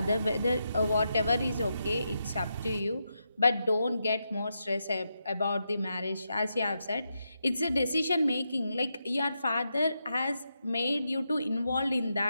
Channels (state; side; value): inverted; both; correlation -0.85